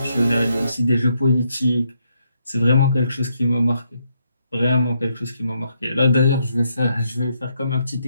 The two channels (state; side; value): inverted; both; correlation -0.77